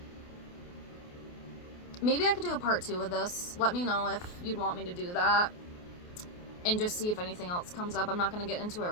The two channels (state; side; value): late; right; 28 ms